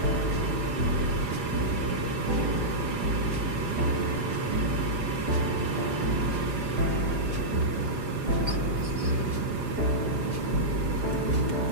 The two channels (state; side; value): late; left; 4.9 ms